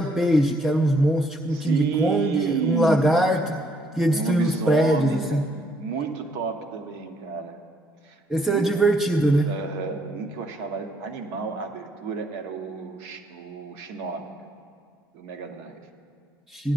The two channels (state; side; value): normal; both; correlation 0.70